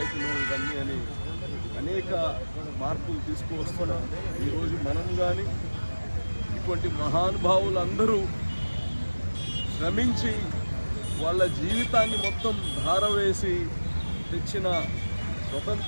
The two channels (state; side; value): inverted; both; correlation -1.00